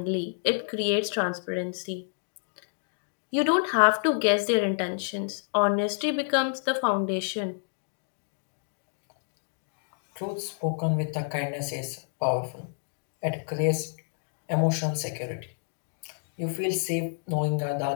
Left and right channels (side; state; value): right; silent; digital silence